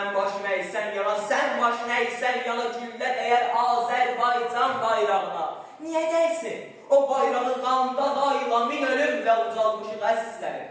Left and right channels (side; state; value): both; identical; correlation 1.00